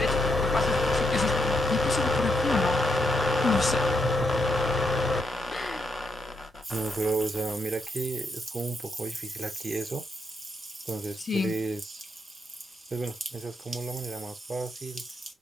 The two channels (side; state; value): both; normal; correlation 0.79